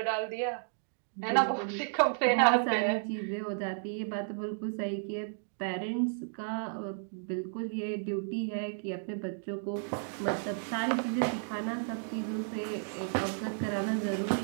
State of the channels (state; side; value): silent; left; digital silence